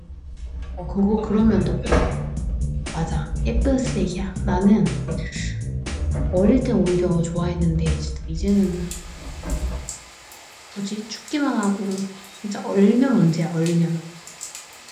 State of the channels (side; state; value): both; identical; correlation 1.00